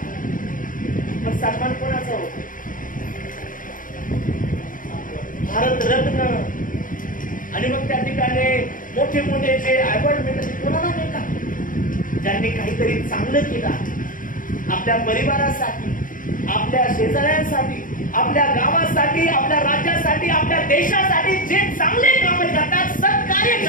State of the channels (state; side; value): late; right; 0.39 ms